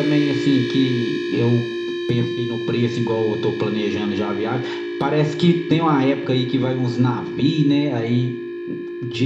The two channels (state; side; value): identical; both; correlation 1.00